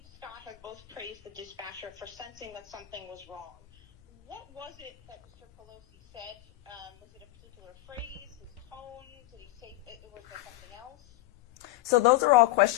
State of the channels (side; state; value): right; quieter; 17.1 dB